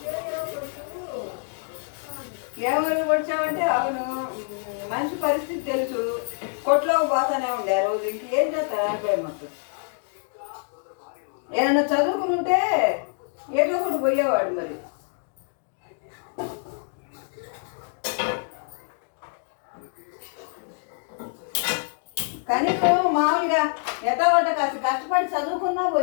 ఎవరు వచ్చావంటే అవును, మంచి పరిస్థితి తెలుసు, కొట్లోకి పోతానే ఉండే ఆ రోజు. ఇంకేం చేస్తారు అనుకోండి. మాకు ఏదన్నా చదువుకుని ఉంటే ఏదో ఒకటి పోయేవాడు. మరి కనీసం మామూలుగా ఎట్టగొట్ట కాస్త కష్టపడి చదువుకున్నా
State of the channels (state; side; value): silent; right; 61 dB below the other